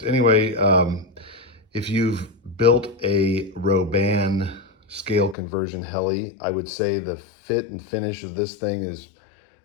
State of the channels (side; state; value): right; drops out; at 5.4 s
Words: Anyway, if you've built a Roban scale conversion heli, I would say the fit and finish of this thing is